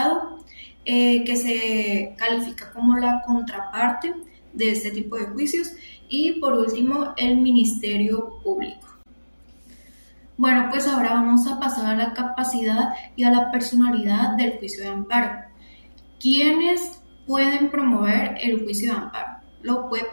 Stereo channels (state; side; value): inverted; both; correlation -1.00